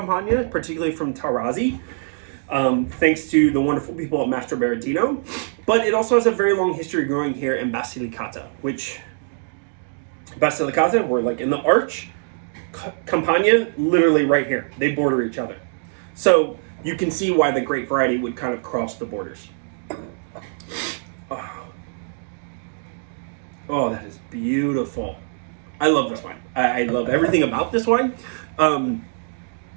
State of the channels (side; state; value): left; silent; 64 dB below the other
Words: particularly from Tarazi, thanks to the wonderful people at Mastro Berardino. But it also has a very long history growing here in Basilicata, which Basilicata, we're like in the arch, Campania, literally right here. They border each other. So you can see why the grape variety would kind of cross the borders. Oh, that is beautiful. I love this wine. I love everything about this wine.